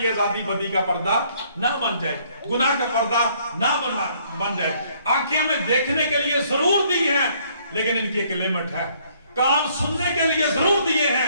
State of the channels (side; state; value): both; inverted; correlation -0.64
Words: ये आजादी बदी का पर्दा ना बन जाए, गुनाह का पर्दा ना बन जाए। आंखें हमें देखने के लिए जरूर दी है, लेकिन इनकी एक लिमिट है। कान सुनने के लिए जरूर दिए